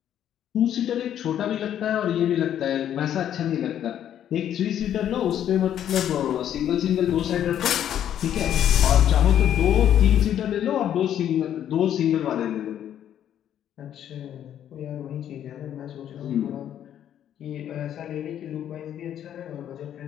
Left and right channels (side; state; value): right; quieter; 10.4 dB